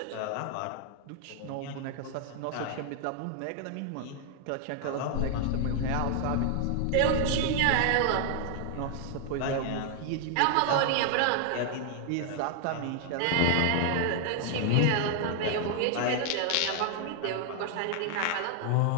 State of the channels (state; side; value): different; both; correlation 0.00